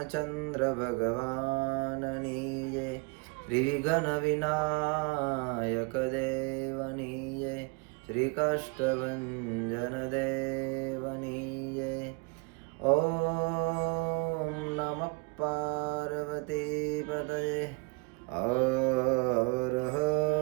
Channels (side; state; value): left; quieter; 30.4 dB